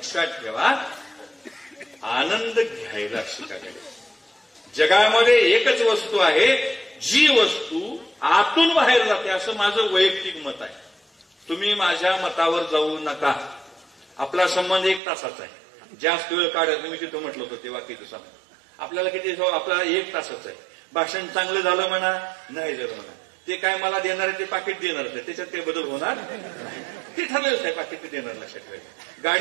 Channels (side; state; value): left; drops out; at 15.0 s